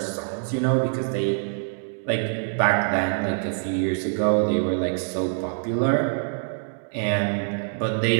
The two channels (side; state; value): left; silent; digital silence